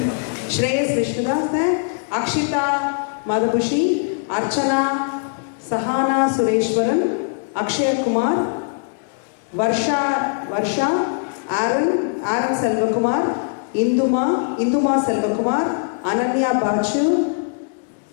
Shreyas Vishnudas है, अक्षिता मधुभूषी, अर्चना सहाना सुरेश्वरन, अक्षय कुमार, वर्षा आरन सेल्वकुमार, इंदुमा सेल्वकुमार, अनन्या बाचू,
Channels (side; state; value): right; silent; digital silence